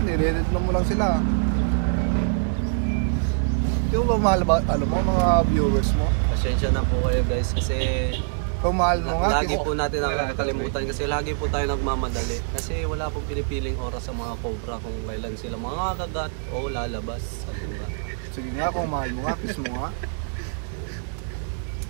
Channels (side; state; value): left; silent; digital silence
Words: Nire-edit mo lang sila. Di mo ba mahal ba, alam mo, mga viewers mo? Pasensya na po kayo guys kasi Kung mahal mo nga, lagi po natin nakakalimutan kasi lagi po tayo nagmamadali. Kasi wala pong pinipiling oras sa mga cobra kung kailan sila mga kagat o lalabas. Sabi ba? sige nga, kung mahal mo nga, kiss mo nga.